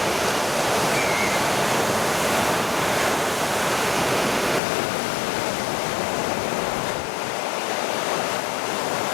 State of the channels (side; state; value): right; drops out; at 4.6 s